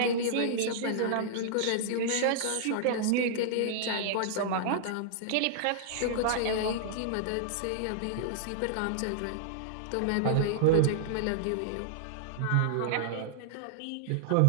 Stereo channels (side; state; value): both; different; correlation -0.01